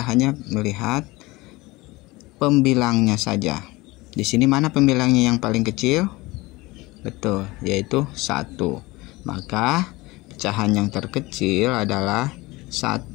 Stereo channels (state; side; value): quieter; right; 21.6 dB